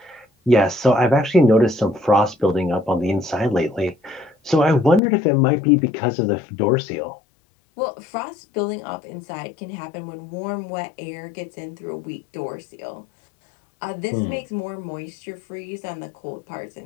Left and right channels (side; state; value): right; drops out; at 5.0 s